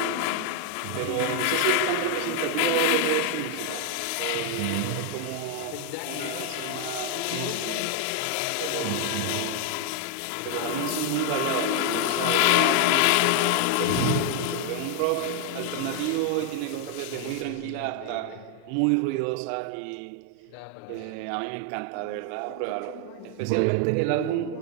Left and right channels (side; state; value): both; different; correlation 0.00